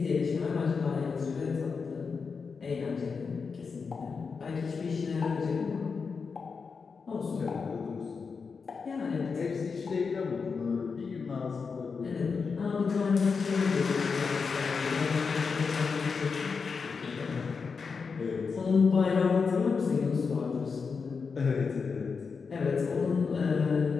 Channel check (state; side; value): quieter; right; 5.2 dB